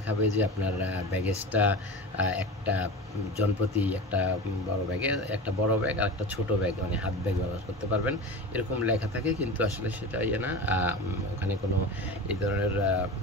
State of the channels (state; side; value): normal; both; correlation 0.29